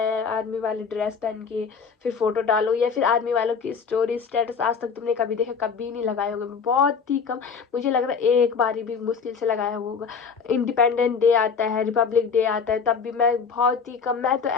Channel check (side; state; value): right; quieter; 5.8 dB